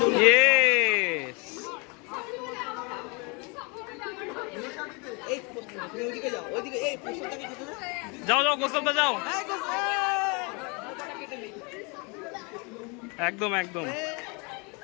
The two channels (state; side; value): quieter; right; 30.9 dB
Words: Yes! যাও যাও গোসলটা যাও, একদম একদম